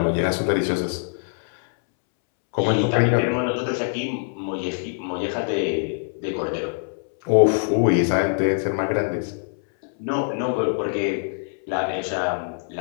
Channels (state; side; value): silent; right; 63 dB below the other